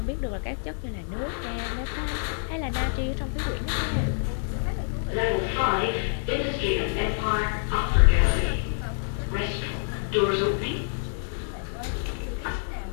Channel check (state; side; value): silent; right; digital silence